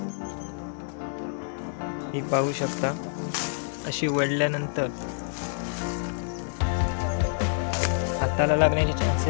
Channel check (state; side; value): silent; right; digital silence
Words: ही पाहू शकता. अशी वळल्यानंतर हाताला लागण्याचे